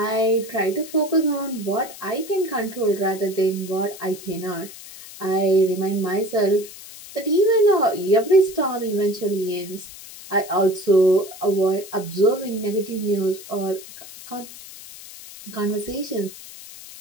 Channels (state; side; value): noise; left; hiss, 16 dB below the sound